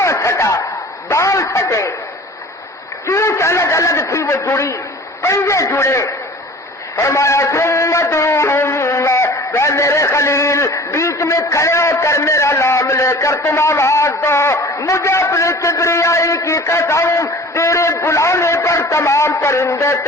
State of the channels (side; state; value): both; normal; correlation 0.43